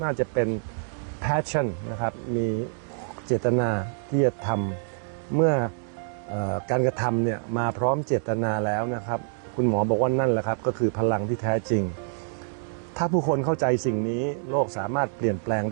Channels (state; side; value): silent; left; digital silence